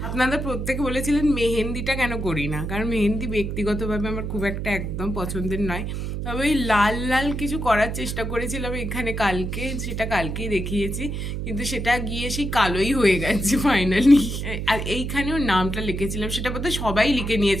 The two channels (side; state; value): right; noise; hum, 4 dB below the sound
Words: আপনারা প্রত্যেকে বলেছিলেন মেহেন্দিটা কেন করি না, কারণ মেহেন্দি ব্যক্তিগতভাবে আমার খুব একটা একদম পছন্দের নয়। তবে ওই লাল লাল কিছু করার চেষ্টা করেছিলাম এখানে কালকে, সেটা কালকেই দেখিয়েছি, কিন্তু সেটা গিয়ে সেই কালোই হয়ে গেছে ফাইনালি। আর এইখানেও নামটা লিখেছিলাম, সেটা বোধহয় সবাই লিখে